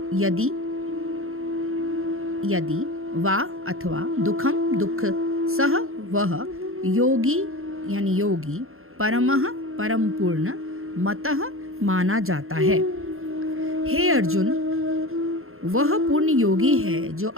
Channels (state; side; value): late; left; 0.61 ms